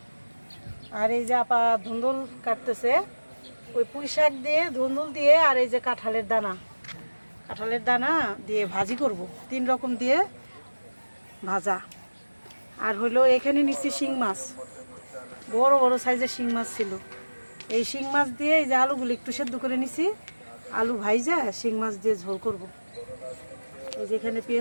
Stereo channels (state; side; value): inverted; both; correlation -1.00